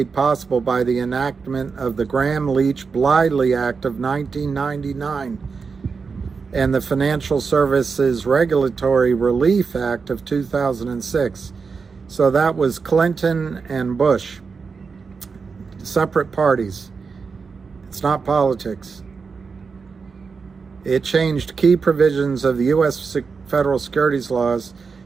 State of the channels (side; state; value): left; quieter; 5.1 dB